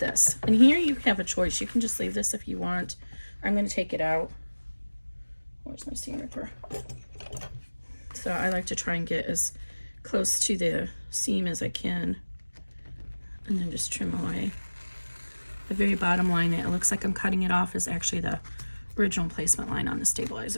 And here you have a choice. You can just leave this if you want. I'm going to take it out. Where's my seam ripper? So I like to try and get as close to the seam as I can, and then just trim away. The very bottom line, it looks like I'm cutting it off, is actually the original placement line on the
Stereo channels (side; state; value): both; inverted; correlation -1.00